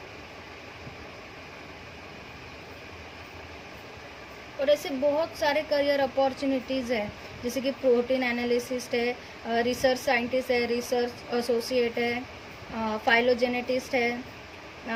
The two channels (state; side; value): identical; both; correlation 1.00